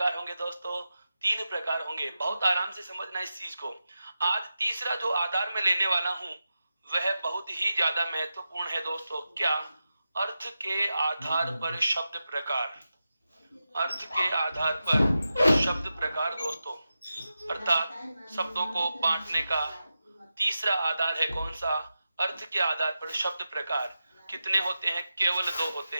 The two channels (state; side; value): inverted; both; correlation -0.91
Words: होंगे दोस्तों, 3 प्रकार होंगे। बहुत आराम से समझना इस चीज को। आज तीसरा जो आधार में लेने वाला हूं वह बहुत ही ज्यादा महत्वपूर्ण है दोस्तों। क्या, अर्थ के आधार पर शब्द प्रकार। अर्थ के आधार पर शब्द प्रकार दोस्तों, अर्थात शब्दों को बांटने का तीसरा आधार है कौन सा, अर्थ के आधार पर शब्द प्रकार। कितने होते हैं, केवल 2 होते